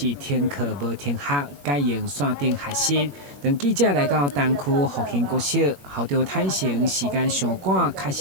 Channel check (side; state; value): left; late; 21 ms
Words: 停课无停学，改用线顶学习。当记者来到东区复兴国小，校长坦承时间上赶，确